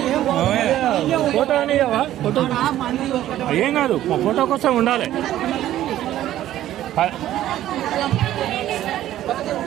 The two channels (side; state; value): left; quieter; 13.1 dB